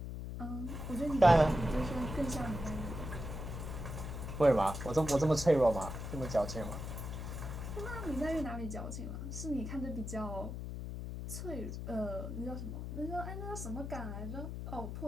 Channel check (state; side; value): noise; left; hum, 6 dB below the sound